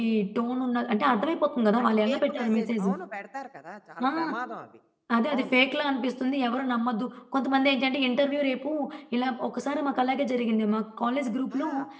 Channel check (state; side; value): identical; both; correlation 1.00